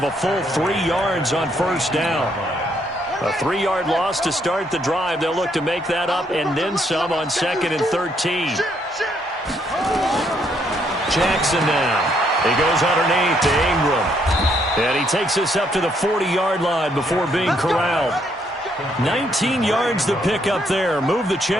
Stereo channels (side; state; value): both; normal; correlation 0.72